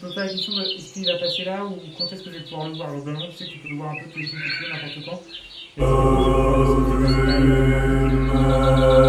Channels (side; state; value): both; identical; correlation 1.00